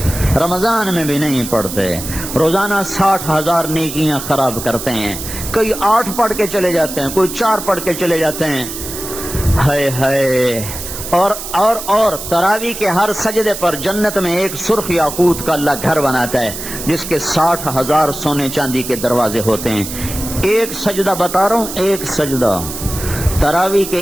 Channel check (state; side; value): noise; right; hiss, 8 dB below the sound